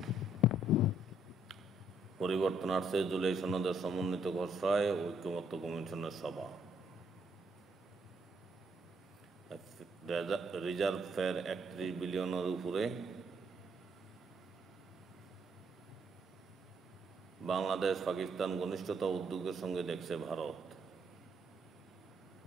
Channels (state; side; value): normal; both; correlation 0.70